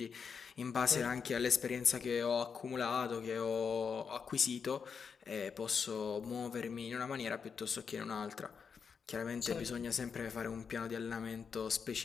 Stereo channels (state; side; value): quieter; right; 6.2 dB